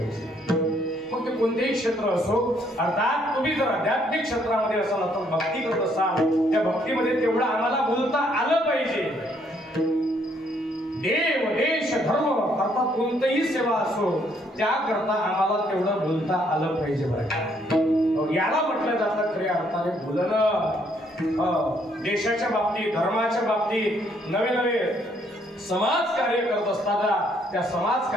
मग ते कोणतेही क्षेत्र असो, अर्थात तुम्ही जर आध्यात्मिक क्षेत्रामध्ये असाल तर भक्ती करत असाल त्या भक्तीमध्ये तेवढं आम्हाला बोलता आलं पाहिजे. देव देश धर्म अर्थात कोणतीही सेवा असो त्याकरता आम्हाला तेवढं बोलता आलं पाहिजे बरं का. याला म्हटलं जातं खऱ्या अर्थाने बोलणं. देशाच्या बाबतीत, धर्माच्या बाबतीत नवे नवे समाज कार्य करत असताना त्या समाज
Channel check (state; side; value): normal; both; correlation 0.68